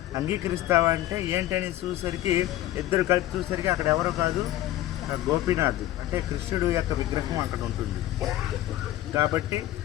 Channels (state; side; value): quieter; right; 14.4 dB